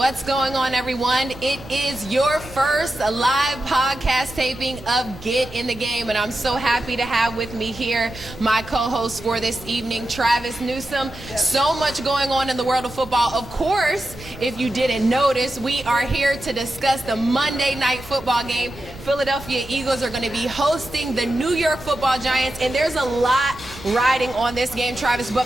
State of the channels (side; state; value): right; noise; rumble, 17 dB below the sound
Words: going on, everyone? It is your first live podcast taping of Get in the Game, and I'm so happy to have with me here my co-host for this evening, Travis Newsome. So much going on in the world of football. Of course, if you didn't notice, we are here to discuss the Monday night football game. Philadelphia Eagles are going to be hosting the New York Football Giants, and there's a lot riding on this game, Travis. But